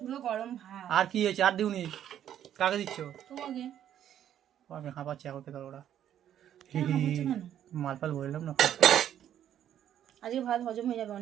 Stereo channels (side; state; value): left; quieter; 10.5 dB